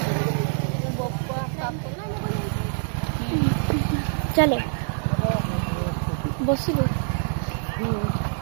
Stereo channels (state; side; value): silent; left; 62 dB below the other